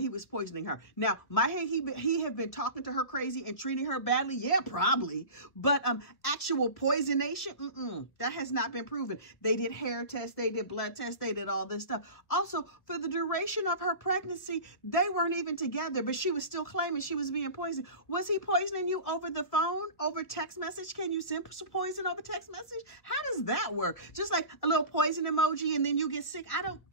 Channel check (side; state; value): right; late; 1.4 ms